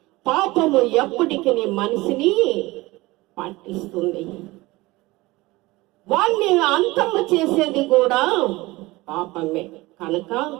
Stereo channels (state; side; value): quieter; left; 20.7 dB